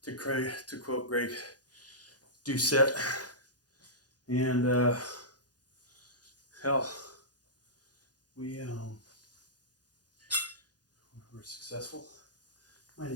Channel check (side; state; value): right; late; 0.69 ms